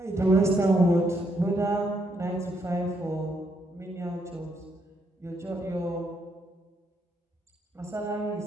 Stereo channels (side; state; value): both; normal; correlation 0.75